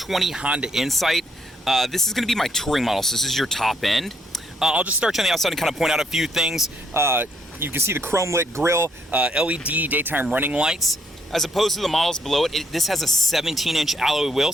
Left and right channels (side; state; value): both; normal; correlation 0.71